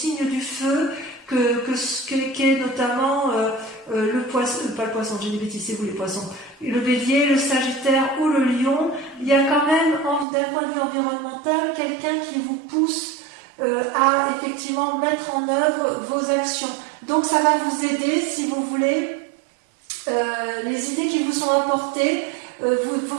du feu, qui est notamment le poisson, pas le poisson, j'ai des bêtises, c'est vous les poissons, le bélier, le sagittaire ou le lion. Il y a quand même, d'un point de vue environnemental, quelqu'un qui vous pousse à effectivement mettre en œuvre vos actions. Donc ça va vous aider, si vous voulez, les idées qui vous sont apportées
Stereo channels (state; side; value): drops out; left; at 10.2 s